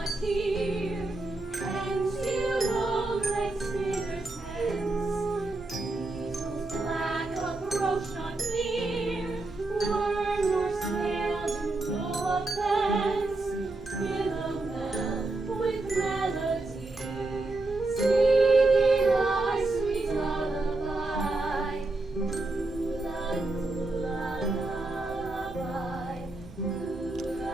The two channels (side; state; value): left; quieter; 3.0 dB